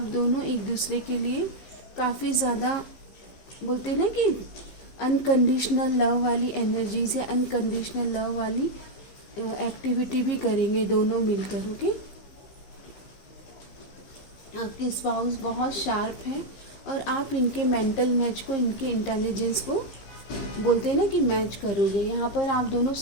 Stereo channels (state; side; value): late; right; 15 ms